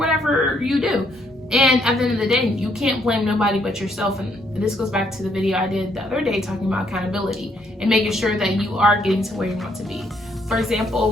you do. And at the end of the day, you can't blame nobody but yourself. And this goes back to the video I did the other day talking about accountability and making sure that you are getting to where you want to be. For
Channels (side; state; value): both; normal; correlation 0.71